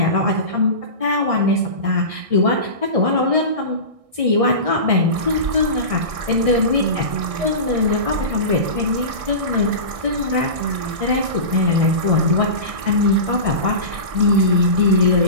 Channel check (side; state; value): left; late; 1.6 ms